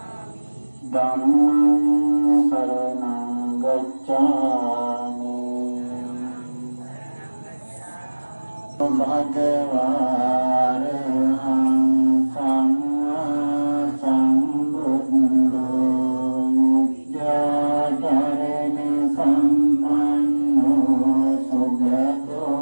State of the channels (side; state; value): both; inverted; correlation -1.00